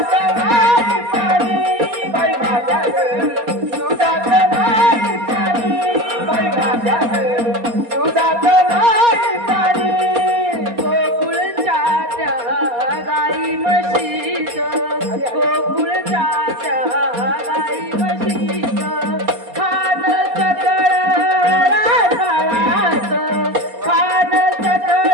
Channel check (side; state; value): left; late; 4.2 ms